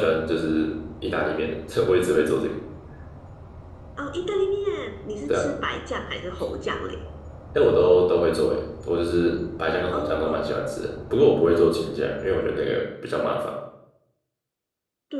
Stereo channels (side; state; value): both; identical; correlation 1.00